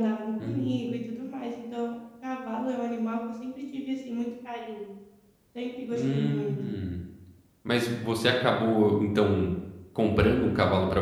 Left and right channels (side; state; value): both; identical; correlation 1.00